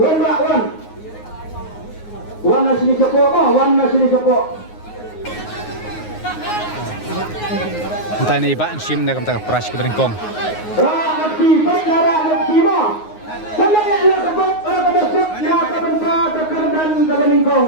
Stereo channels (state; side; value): late; right; 9.5 ms